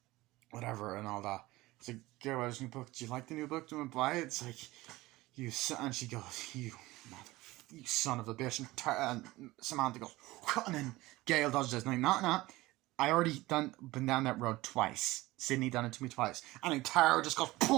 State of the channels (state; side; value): quieter; left; 19.2 dB